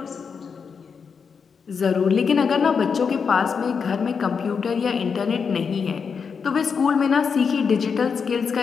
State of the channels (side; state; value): right; quieter; 6.0 dB